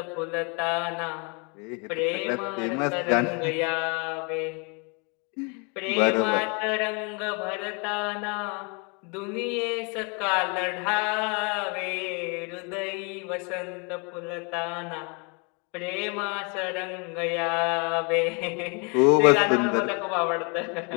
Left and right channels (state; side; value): quieter; right; 33.7 dB